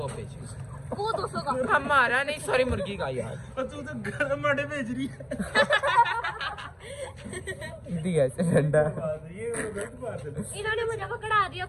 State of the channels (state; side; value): identical; both; correlation 1.00